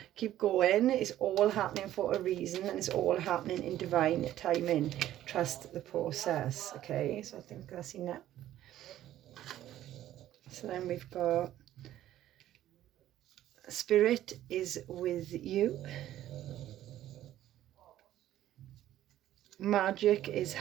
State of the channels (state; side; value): quieter; left; 13.0 dB